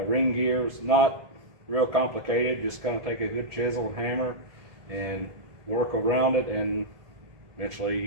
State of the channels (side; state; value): left; late; 1.7 ms